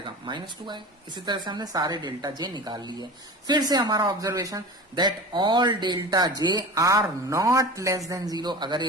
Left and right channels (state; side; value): normal; both; correlation 0.33